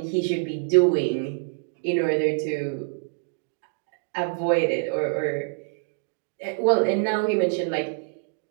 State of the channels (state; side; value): silent; left; digital silence